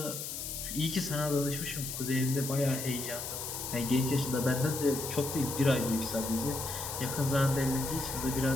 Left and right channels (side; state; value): left; noise; hiss, 6 dB below the sound